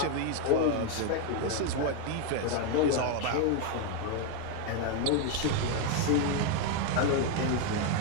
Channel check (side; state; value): both; different; correlation 0.01